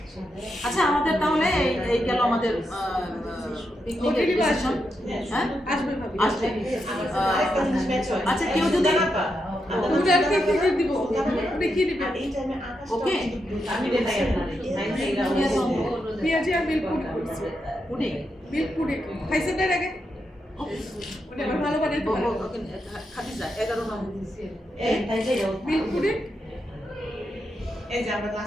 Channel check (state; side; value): normal; both; correlation 0.84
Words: আচ্ছা আমাদের তাহলে এই গেল আমাদের পিকনিকের ডিসিশন হ্যাঁ আসবে ভাবি আসবে আরেকটা জিনিস ম্যাচ হয় আচ্ছা কেউ যদি ওটা আর কি দিব ওটা কি দিবে এই টাইমে আকাশ ওকে আমি দেখাই আপনাদের পেঁয়াজি আর মিল্ক পুডিং করছে পুডিং মিল্ক পুডিং খাইছেন এর আগে ওটা আবার ভালো বানাইতে পারে খাদিজা 11 নম্বর এই তাই যাই মিল্ক পুডিং এই যে আমরা